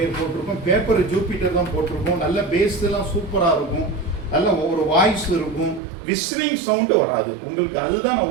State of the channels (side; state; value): left; drops out; at 5.8 s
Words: போட்டிருக்கோம். பேப்பர் ஜூபிட்டர் தான் போட்டிருக்கோம். நல்ல பேஸ் எல்லாம் சூப்பராக இருக்கும், நல்ல ஒரு வாய்ஸ் இருக்கும், விசிலிங் சவுண்டு வராது உங்களுக்கு. அதுதான்